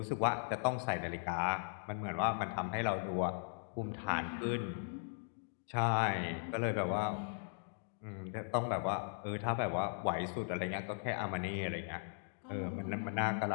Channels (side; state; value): right; silent; digital silence